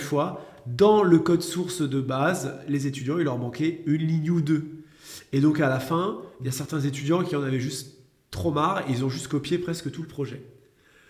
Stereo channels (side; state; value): both; identical; correlation 1.00